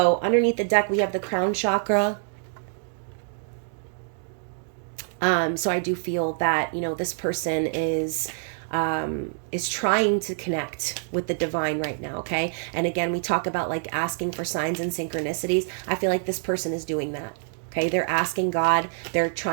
underneath the deck, we have the crown chakra. So I do feel that, this person is trying to connect with the divine right now, okay? And again, we talk about like asking for signs and synchronicities. I feel like this person is doing that. Okay, they're asking God, they're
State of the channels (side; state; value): left; silent; 61 dB below the other